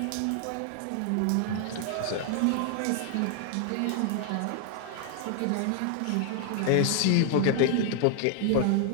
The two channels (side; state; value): both; different; correlation 0.00